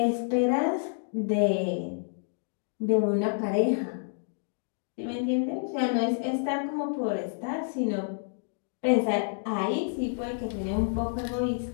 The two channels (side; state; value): right; silent; digital silence